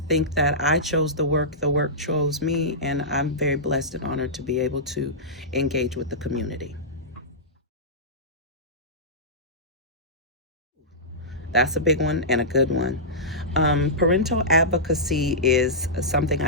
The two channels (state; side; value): normal; both; correlation -0.16